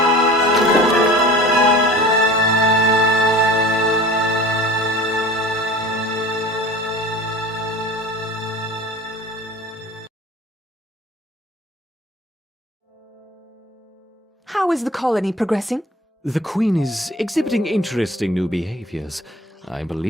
How is the colony progressing? The Queen is exhibiting interesting new behaviors. I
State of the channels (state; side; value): normal; both; correlation 0.41